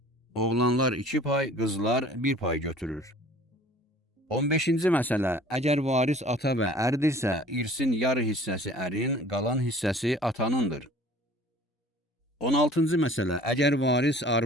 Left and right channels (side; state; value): both; normal; correlation 0.49